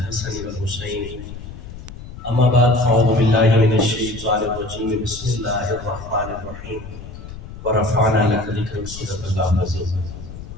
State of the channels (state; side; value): noise; left; rumble, 13 dB below the sound